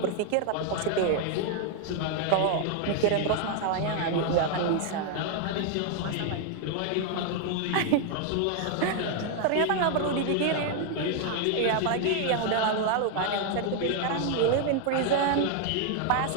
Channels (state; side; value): different; both; correlation 0.00